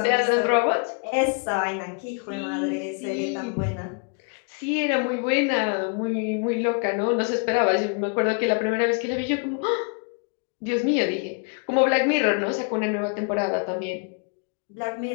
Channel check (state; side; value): quieter; right; 36.4 dB